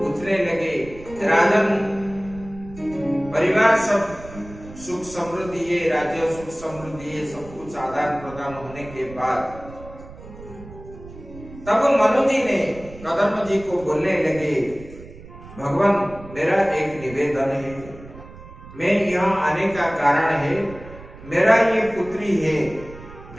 लगे, राजन परिवार सब सुख समृद्धि है, राज्य सुख समृद्धि है, सब कुछ आदान प्रदान होने के बाद तब मनु जी ने कदम जी को बोलने लगे, भगवान मेरा एक निवेदन है, मैं यहाँ आने का कारण है, मेरा ये पुत्री है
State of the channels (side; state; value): right; noise; rumble, 17 dB below the sound